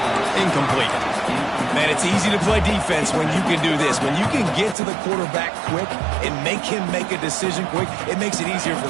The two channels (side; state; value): left; drops out; at 4.8 s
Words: Incomplete. Man, it's easy to play defense when you can do this. When you can get to the quarterback quick and make him make a decision quick, it makes it easier for